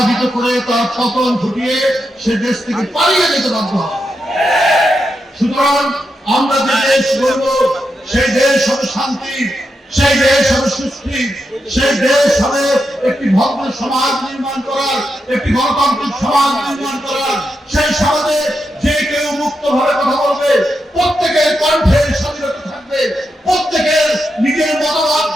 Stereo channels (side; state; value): both; normal; correlation 0.86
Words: করে তার পতন ঘটিয়ে সে দেশ থেকে পালিয়ে যেতে বাধ্য হয়। সুতরাং আমরা যে দেশ গড়ব, সেই দেশ হবে শান্তি, সেই দেশ হবে সুস্থি, সেই দেশ হবে একটি ভদ্র সমাজ নির্মাণ করার, একটি গণতান্ত্রিক সমাজ নির্মাণ করার। সেই সমাজে যে কেউ মুক্তভাবে কথা বলবে, প্রত্যেকের কণ্ঠের স্বাধীনতা থাকবে, প্রত্যেকের নিজের মতামত